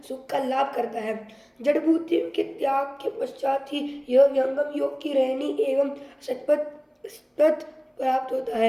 सुख का लाभ करता है। जड़भूति के त्याग के पश्चात ही यह व्यंगम योग की रहनी एवं सतपथ प्राप्त होता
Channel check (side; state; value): both; identical; correlation 1.00